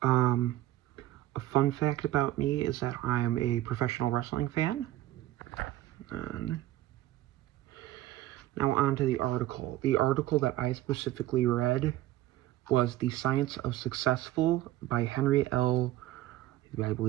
A fun fact about me is that I am a professional wrestling fan. Now on to the article. The article that I specifically read was The Science of Successful by Henry L. I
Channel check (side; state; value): left; quieter; 15.2 dB